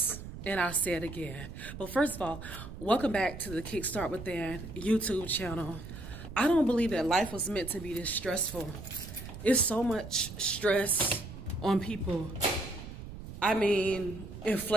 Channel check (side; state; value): right; noise; rumble, 12 dB below the sound